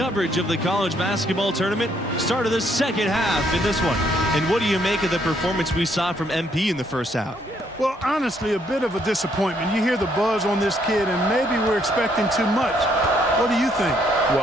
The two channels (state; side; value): normal; both; correlation 0.70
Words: of the college basketball tournament. Start of the second half in this one. And what do you make of the performance we saw from MP in the first half? Well, honestly, a bit of a disappointment. You hear the buzz on this kid, and maybe we're expecting too much. What do you think?